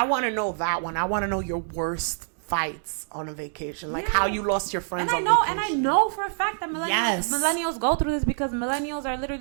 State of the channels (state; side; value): silent; left; digital silence